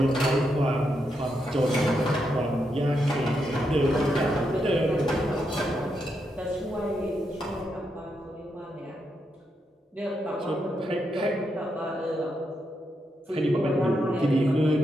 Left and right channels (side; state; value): both; normal; correlation 0.82